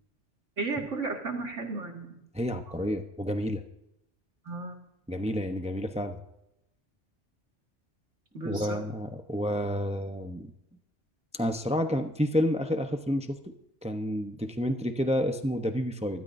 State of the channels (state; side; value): normal; both; correlation 0.69